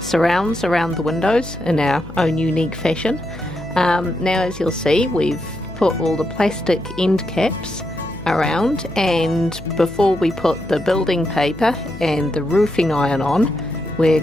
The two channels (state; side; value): noise; left; hum, 15 dB below the sound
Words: around the windows in our own unique fashion. Now as you'll see, we've put all the plastic end caps around, and before we put the building paper and the roofing iron on, we're